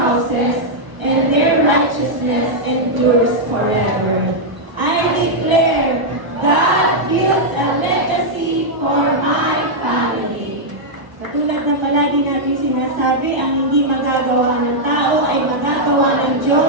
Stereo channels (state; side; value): late; left; 1.0 ms